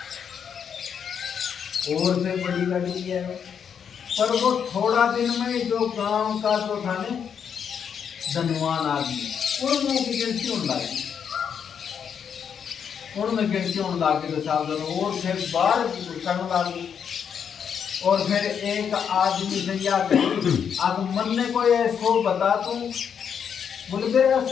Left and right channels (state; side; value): quieter; right; 7.5 dB